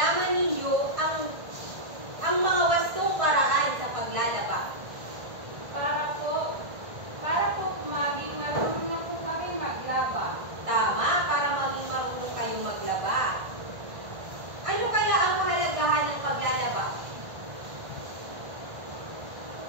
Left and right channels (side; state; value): left; late; 1.5 ms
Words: ninyo ang mga wastong paraan sa paglalaba. Para po maging marunong na po kami maglaba. Tama, para maging marunong kayong maglaba. Ano kaya ang kahalagahan ng paglalaba?